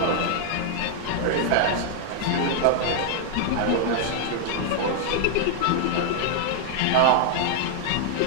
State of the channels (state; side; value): different; both; correlation 0.00